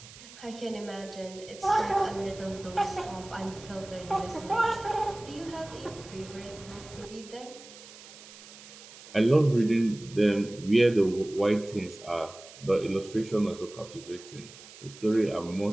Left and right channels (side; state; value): right; noise; hiss, 18 dB below the sound